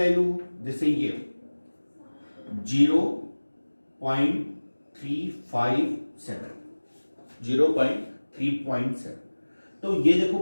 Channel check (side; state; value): both; inverted; correlation -1.00